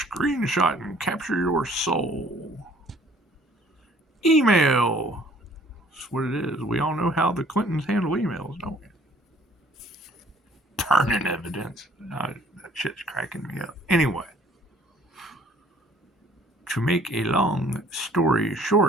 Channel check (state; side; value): normal; both; correlation 0.57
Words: and capture your soul. Email. That's what it is. We all know how the Clintons handle emails, don't we? Burning evidence. That shit's cracking me up. Anyway. To make a long story